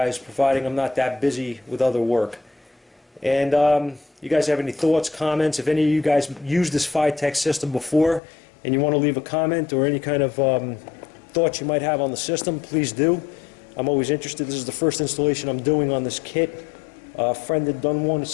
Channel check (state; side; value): drops out; right; at 8.2 s